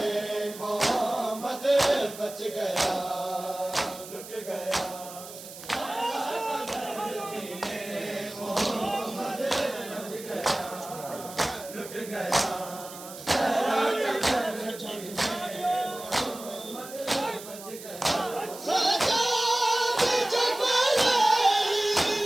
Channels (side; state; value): right; noise; hiss, 14 dB below the sound